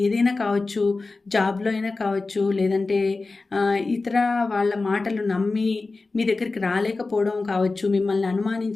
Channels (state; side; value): quieter; right; 3.6 dB